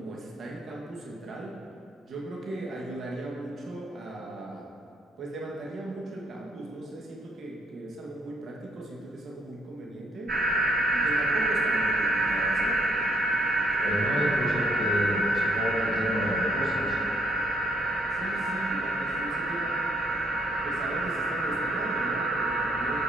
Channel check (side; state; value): both; normal; correlation 0.68